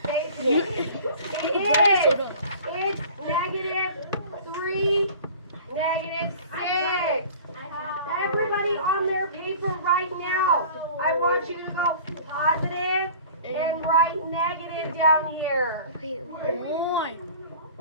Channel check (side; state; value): both; inverted; correlation -0.44